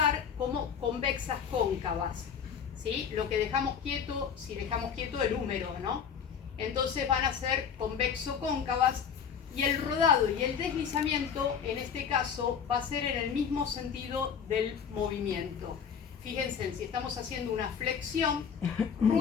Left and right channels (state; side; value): quieter; right; 7.2 dB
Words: como convexas cóncavas, ¿sí? Lo que dejamos quieto, si dejamos quieto el húmero, ¿no? Entonces van a ser convexo-cóncavas y el rodado y el deslizamiento en este caso va a ser en el mismo sentido del movimiento. Fíjense, si estamos haciendo una flexión,